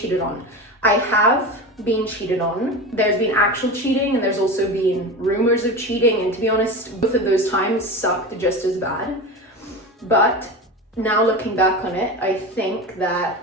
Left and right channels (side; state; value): both; normal; correlation 0.26